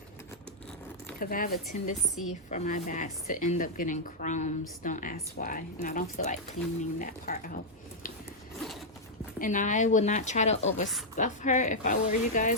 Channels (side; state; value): both; normal; correlation -0.06